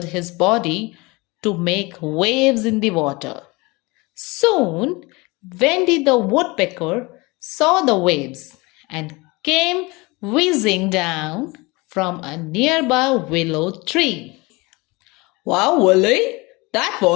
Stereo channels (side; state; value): right; quieter; 24.7 dB